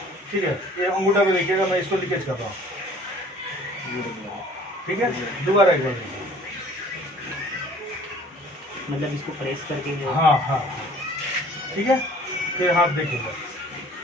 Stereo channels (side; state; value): both; normal; correlation 0.51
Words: ठीक है, ये अंगूठा पे देखिएगा, मैं इसको लीकेज कर रहा हूँ। ठीक है, दोबारा एक बार देखिए। मतलब इसको प्रेस करके हाँ हाँ, ठीक है, फिर हाथ देखिएगा,